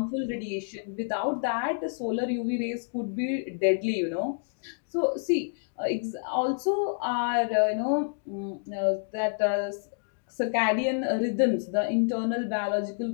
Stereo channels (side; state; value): right; silent; digital silence